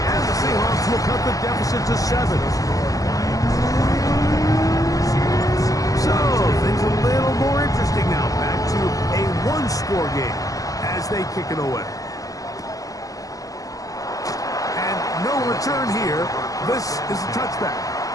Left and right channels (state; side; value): late; right; 0.17 ms